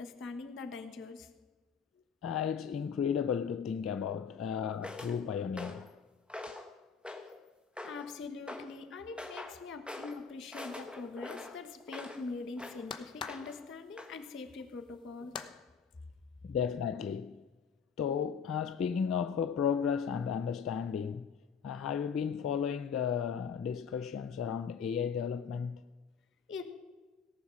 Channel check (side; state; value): right; quieter; 6.6 dB